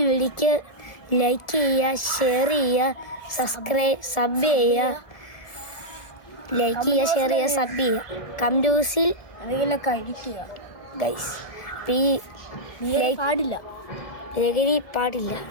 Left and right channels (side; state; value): right; late; 1.4 ms